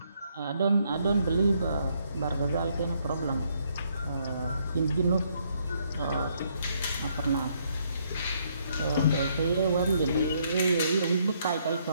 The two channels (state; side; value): inverted; both; correlation -0.71